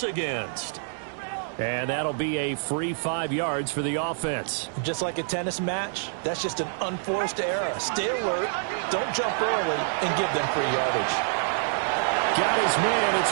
against? And that'll be a free 5 yards for the offense. Just like a tennis match, that's just an unforced error. Stay alert, don't jump early, and give them free yardage. Got his man,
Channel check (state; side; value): silent; left; 60 dB below the other